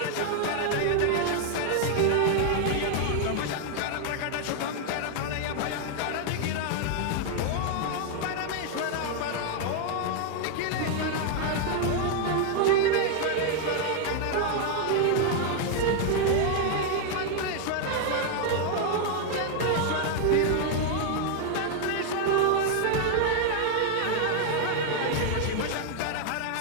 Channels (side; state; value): both; different; correlation 0.00